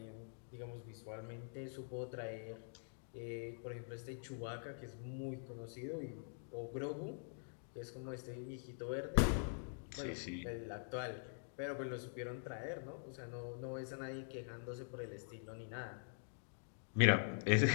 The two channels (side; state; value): right; silent; digital silence